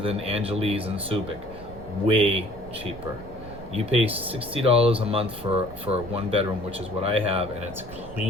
Angeles and Subic, way cheaper. You pay $60 a month for a one bedroom, which is what I have, and it's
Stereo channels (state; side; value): noise; right; rumble, 16 dB below the sound